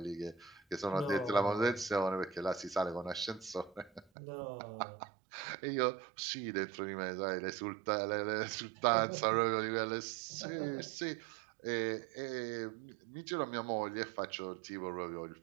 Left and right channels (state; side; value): drops out; left; at 4.0 s